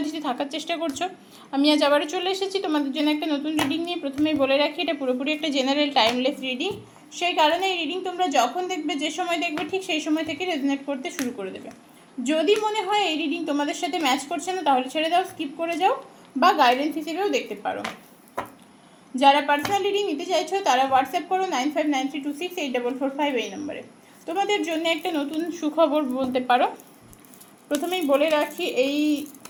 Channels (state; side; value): identical; both; correlation 1.00